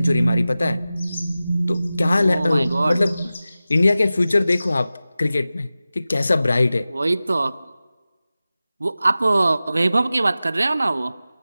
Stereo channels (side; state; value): both; inverted; correlation -0.95